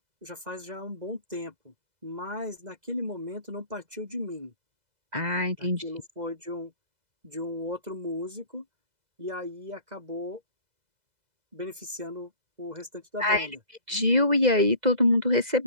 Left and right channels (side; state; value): left; late; 2.0 ms